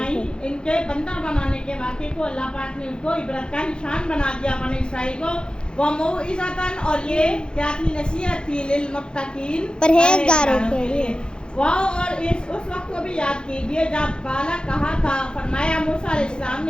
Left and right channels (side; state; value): right; late; 0.049 ms